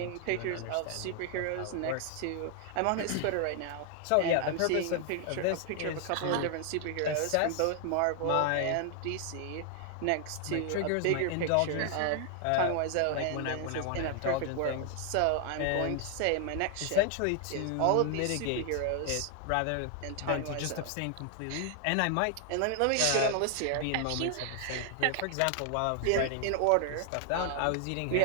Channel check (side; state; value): both; different; correlation 0.00